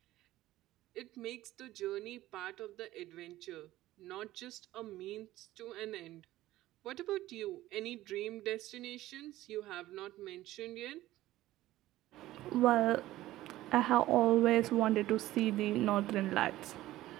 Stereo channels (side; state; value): left; quieter; 15.7 dB